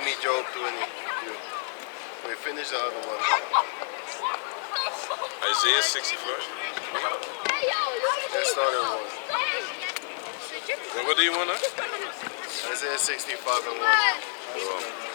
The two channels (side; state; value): right; silent; 59 dB below the other